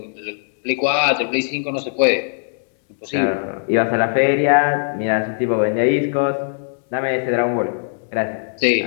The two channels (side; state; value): right; silent; digital silence